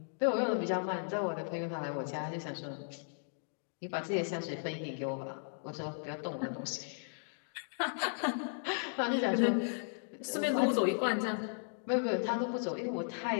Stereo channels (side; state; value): right; silent; digital silence